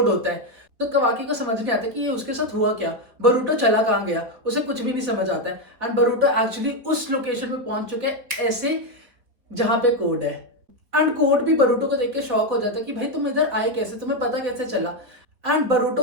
होता है। तो कवाकी को समझ नहीं आता कि ये उसके साथ हुआ क्या, बरूटो चला कहाँ गया, उसे कुछ भी नहीं समझ आता है। एंड बरूटो एक्चुअली उस लोकेशन पे पहुंच चुके हैं ऐसे जहां पे कोड है। एंड कोड भी बरूटो को देख के शॉक हो जाता है कि भाई तुम इधर आए कैसे, तुम्हें पता कैसे चला। एंड बरूटो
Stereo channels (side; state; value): left; late; 4.3 ms